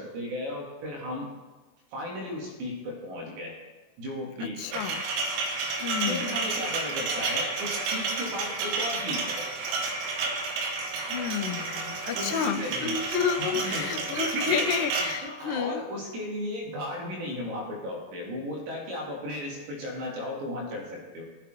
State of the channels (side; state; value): left; late; 22 ms